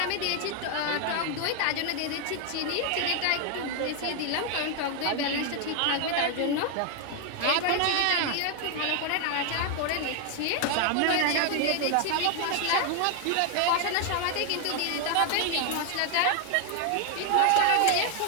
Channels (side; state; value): both; different; correlation 0.00